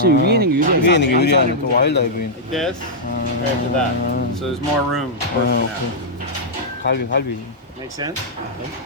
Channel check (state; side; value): normal; both; correlation -0.08